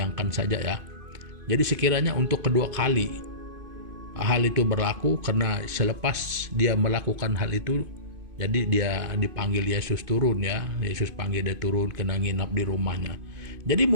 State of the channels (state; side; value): late; left; 2.5 ms